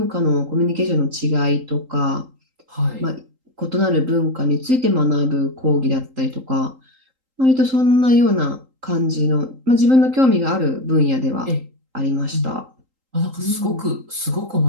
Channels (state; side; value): late; left; 3.8 ms